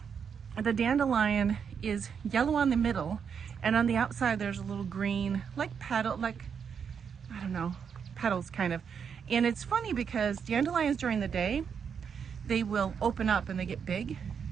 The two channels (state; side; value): quieter; left; 6.9 dB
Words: the dandelion is yellow on the middle, and on the outside there's a little green, petals kind of. And it's funny because dandelions during the day, they will open up and they get big,